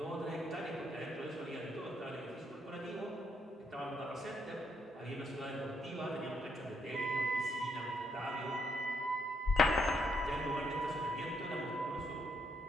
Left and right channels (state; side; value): normal; both; correlation 0.75